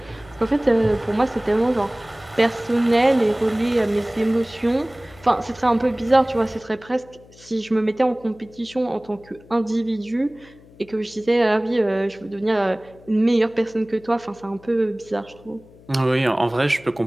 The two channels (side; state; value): left; noise; hum, 24 dB below the sound